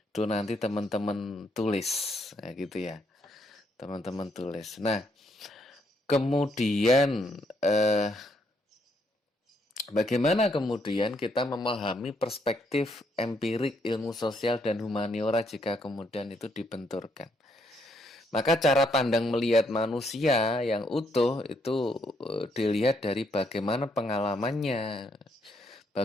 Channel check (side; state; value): both; normal; correlation 0.73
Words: nanti teman-teman tulis ya gitu ya. Teman-teman tulis. Nah, kemudian bagaimana kemudian kita memahami perspektif empirik ilmu sosial dan humaniora jika kemudian itu dibenturkan? Maka cara pandang melihat manusia yang utuh itu dilihat dari bagaimana pengalamannya,